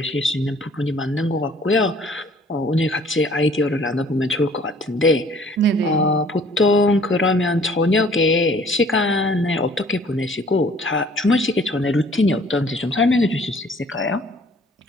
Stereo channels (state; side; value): normal; both; correlation 0.55